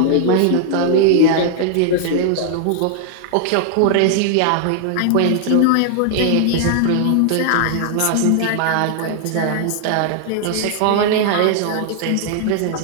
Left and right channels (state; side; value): different; both; correlation 0.00